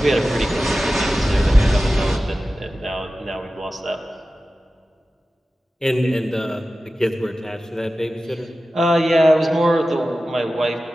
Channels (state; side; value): normal; both; correlation 0.95